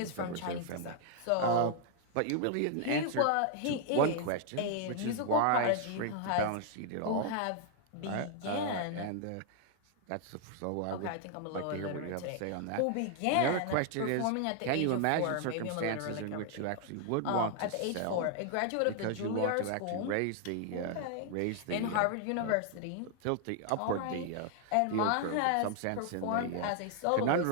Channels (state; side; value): different; both; correlation 0.00